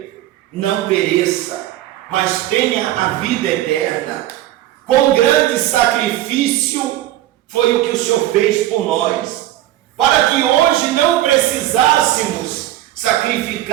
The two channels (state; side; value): quieter; left; 14.2 dB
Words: não pereça, mas tenha a vida eterna. Com grande sacrifício foi o que o Senhor fez por nós, para que hoje não precisássemos